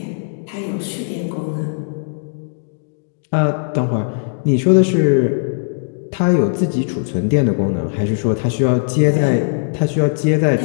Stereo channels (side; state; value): right; silent; digital silence